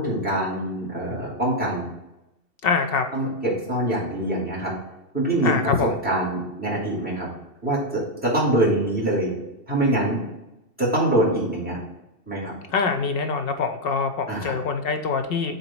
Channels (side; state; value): right; late; 2.7 ms